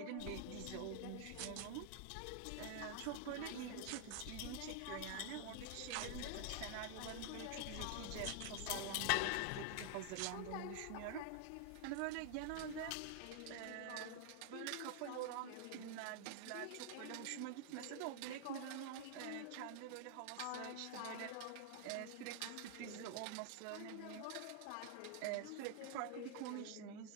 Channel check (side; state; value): both; different; correlation 0.00